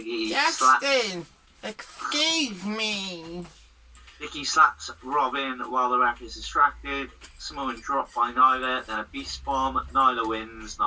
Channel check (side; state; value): both; identical; correlation 1.00